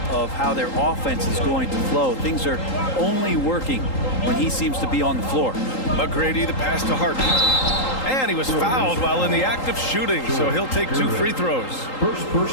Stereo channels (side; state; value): right; late; 3.8 ms